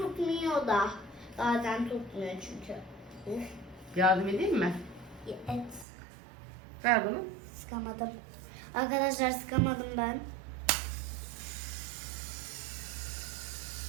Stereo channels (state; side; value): drops out; left; at 5.9 s